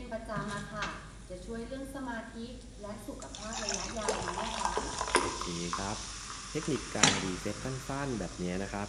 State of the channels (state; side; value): identical; both; correlation 1.00